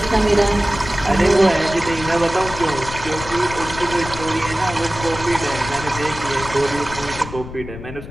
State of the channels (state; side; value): noise; left; rumble, 11 dB below the sound